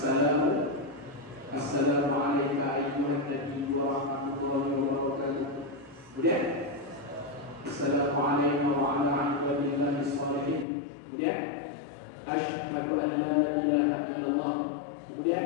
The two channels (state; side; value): drops out; right; at 10.7 s